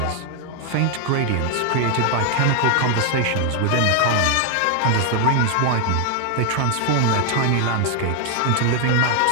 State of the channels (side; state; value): both; different; correlation 0.00